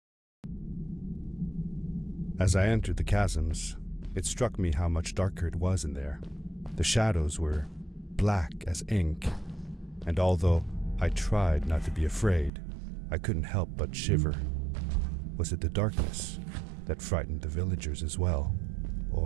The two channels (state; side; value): drops out; left; at 12.5 s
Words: As I entered the chasms, it struck me how much darker it was in there. The shadows were black as ink, and although I tried not to be afraid, I couldn't help but shiver. Was it the darkness that frightened the villagers as well,